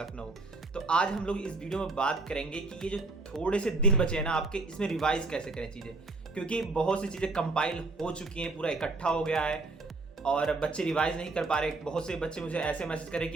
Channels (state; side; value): quieter; left; 3.4 dB